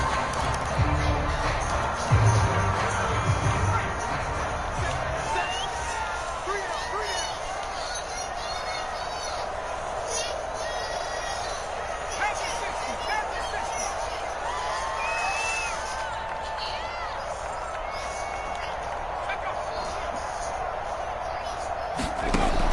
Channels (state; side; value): identical; both; correlation 1.00